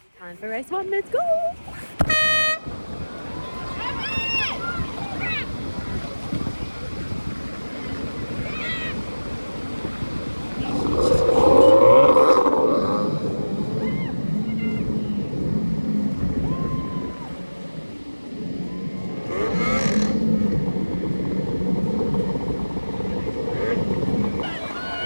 Time for race 1, let's go.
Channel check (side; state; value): both; inverted; correlation -1.00